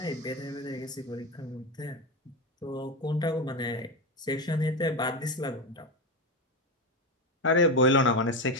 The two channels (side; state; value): both; normal; correlation 0.15